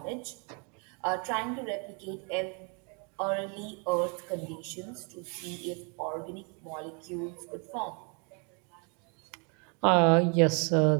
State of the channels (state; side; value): quieter; left; 35.6 dB